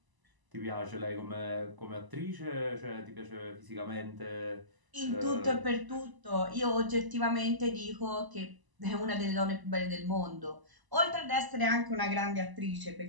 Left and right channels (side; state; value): left; late; 1.0 ms